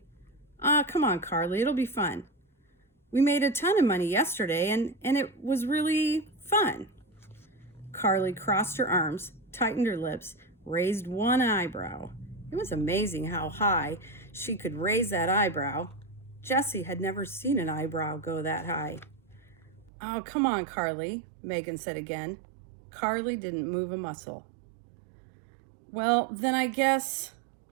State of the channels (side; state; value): left; drops out; at 19.9 s